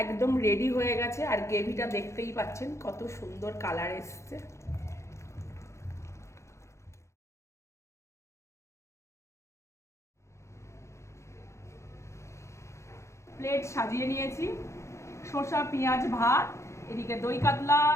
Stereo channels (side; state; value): right; late; 0.14 ms